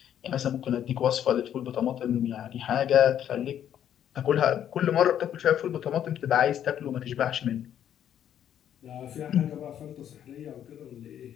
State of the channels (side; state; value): right; quieter; 10.1 dB